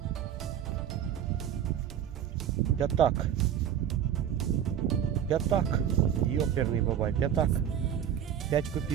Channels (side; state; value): left; quieter; 9.5 dB